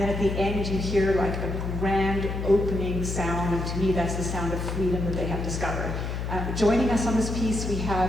at the end, you hear like a grand opening sound, and to me, that's the sound of freedom that they have discovered. Joining us on this piece, we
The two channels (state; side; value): noise; left; hum, 3 dB below the sound